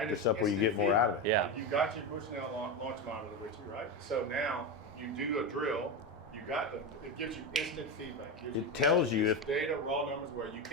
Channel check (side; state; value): both; normal; correlation 0.16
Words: up where you get more out of it. Yeah. You got your Bushnell launch monitor with you, right? So now you do a drill. You got it gives you instant feedback. It tells you if data, raw numbers where you